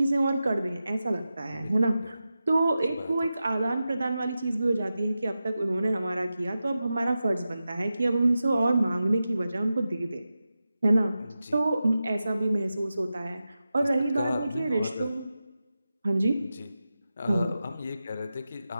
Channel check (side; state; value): both; inverted; correlation -0.92